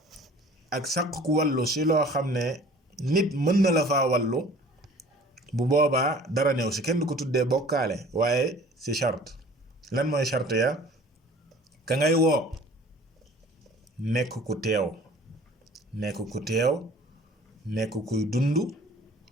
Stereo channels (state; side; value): normal; both; correlation 0.48